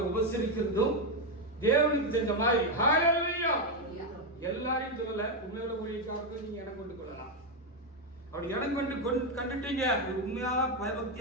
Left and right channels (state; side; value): normal; both; correlation 0.05